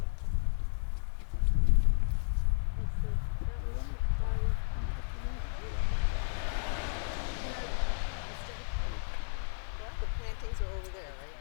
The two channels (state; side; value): silent; right; 56 dB below the other